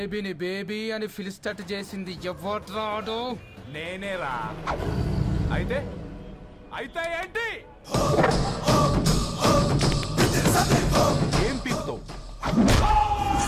బేబీ అని ఫిలిస్టట్ చేసింది ఎవరు? నేనేరా. అయితే అయితే ఏంటి? ఏం పీకుతావు?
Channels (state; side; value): identical; both; correlation 1.00